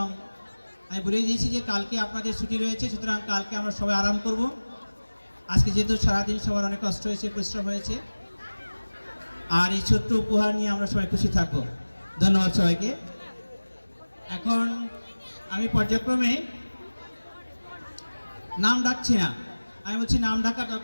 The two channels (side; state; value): both; inverted; correlation -1.00